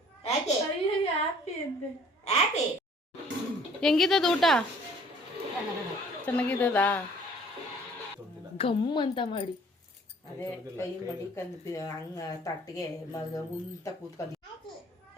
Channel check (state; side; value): normal; both; correlation 0.55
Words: ಹೆಂಗಿದ್ದದ ಊಟ ಚೆನ್ನಾಗಿದ್ದದಾ ಗಮ್ ಅಂತ ಮಾಡಿ ಅದೇ ಕೈ ಮಡಿಕಂದು ಹಂಗ ತಟ್ಟಿಗೆ ಮಗ ಉಂತ ಕೂತ್ಕೊಂಡು